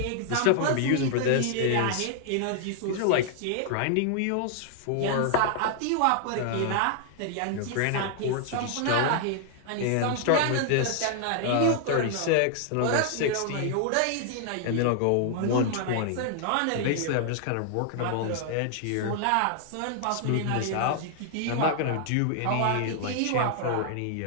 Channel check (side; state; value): both; different; correlation 0.00